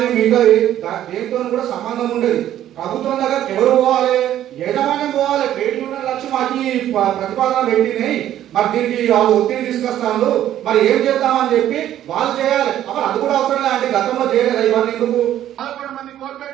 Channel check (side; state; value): left; quieter; 11.9 dB